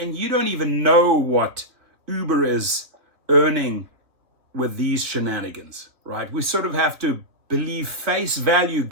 you don't even know what Uber is earning with these shenanigans, right? We sort of have to believe face value,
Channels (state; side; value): late; left; 3.0 ms